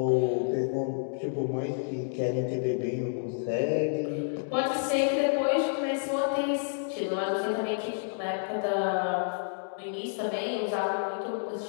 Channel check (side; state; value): right; silent; digital silence